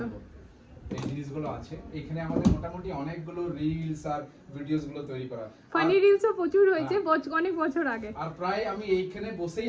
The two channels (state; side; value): identical; both; correlation 1.00